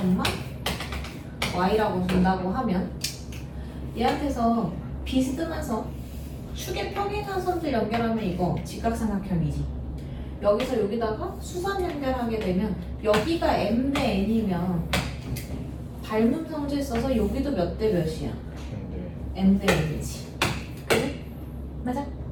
y라고 준다고 하면 얘한테서 비스듬해서 축의 평행한 선들 연결하면 이거 직각삼각형이지. 여기서 여기다가 수선 연결하게 되면 여기가 m 대 n이면 닮은 성질 써서 여기도 몇 대 몇이야? m 대 n이지. 그래? 맞아?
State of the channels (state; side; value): identical; both; correlation 1.00